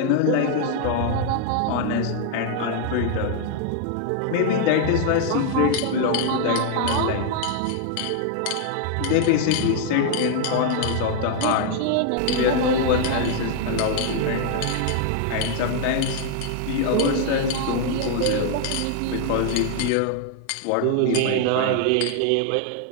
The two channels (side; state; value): both; different; correlation 0.00